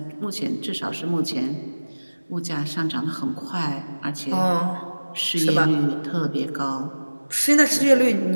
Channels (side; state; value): both; inverted; correlation -1.00